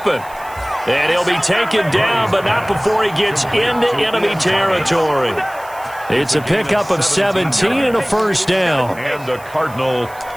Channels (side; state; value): right; noise; hiss, 22 dB below the sound